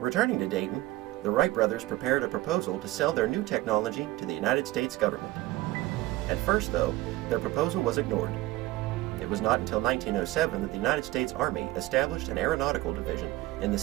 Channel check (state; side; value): quieter; left; 17.8 dB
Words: to Dayton, the Wright brothers prepared a proposal to sell their new technology to the United States government. At first, though, their proposal was ignored. It was not until 1907 that the United States Army established an aeronautical division in the